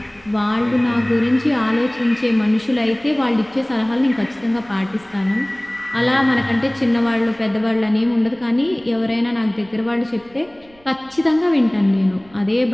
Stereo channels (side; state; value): right; noise; rumble, 28 dB below the sound